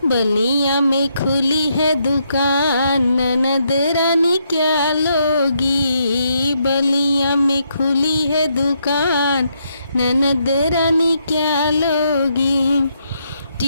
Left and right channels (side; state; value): both; inverted; correlation -0.77